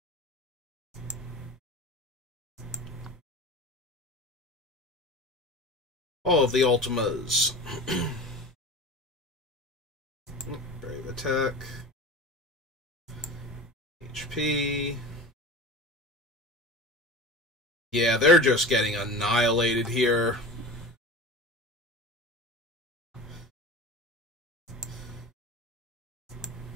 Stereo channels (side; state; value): both; normal; correlation 0.34